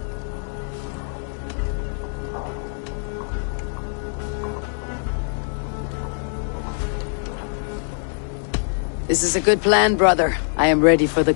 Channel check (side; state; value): right; silent; digital silence